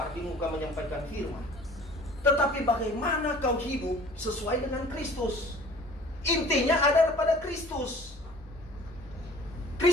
di muka menyampaikan firman. Tetapi bagaimana kau hidup sesuai dengan Kristus. Intinya ada pada Kristus.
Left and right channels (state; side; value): normal; both; correlation 0.49